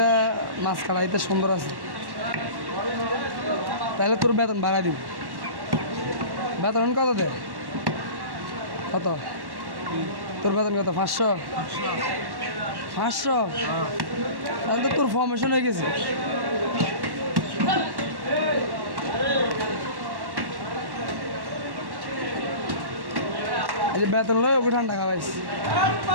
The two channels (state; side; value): late; left; 1.1 ms